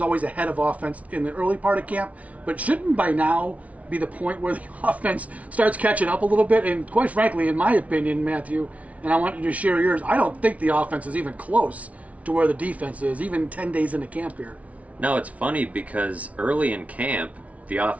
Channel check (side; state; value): left; late; 0.067 ms